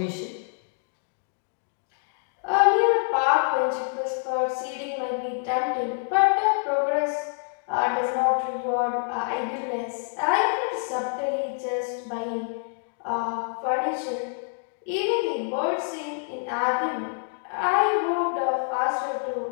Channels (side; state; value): right; silent; digital silence